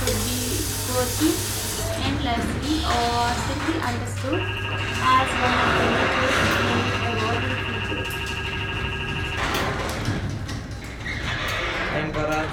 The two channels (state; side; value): identical; both; correlation 1.00